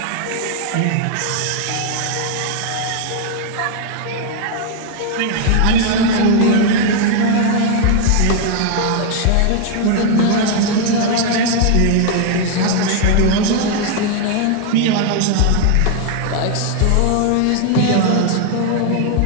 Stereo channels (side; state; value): both; different; correlation 0.00